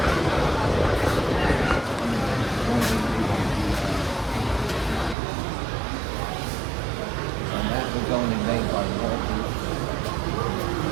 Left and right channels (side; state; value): left; drops out; at 5.2 s